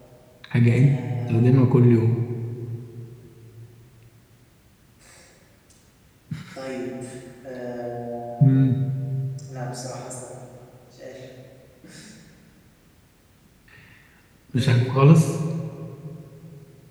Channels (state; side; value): identical; both; correlation 1.00